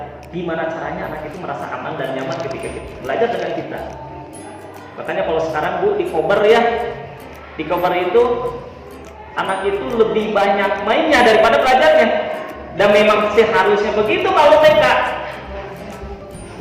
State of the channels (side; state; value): both; identical; correlation 1.00